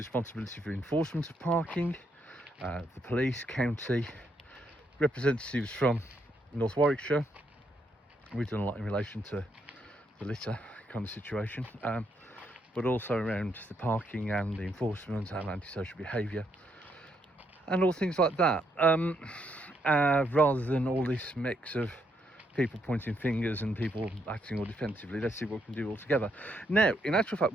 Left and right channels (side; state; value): both; normal; correlation 0.76